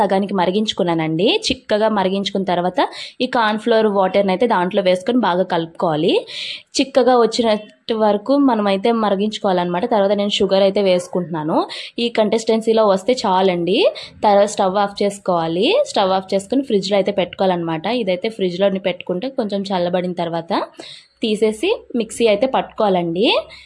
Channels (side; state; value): both; identical; correlation 1.00